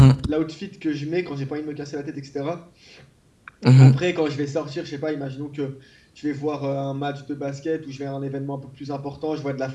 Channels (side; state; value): both; identical; correlation 1.00